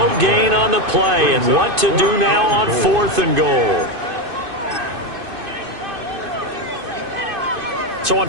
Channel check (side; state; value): left; late; 2.5 ms